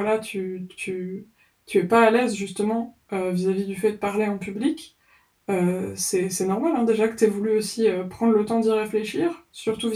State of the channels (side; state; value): both; identical; correlation 1.00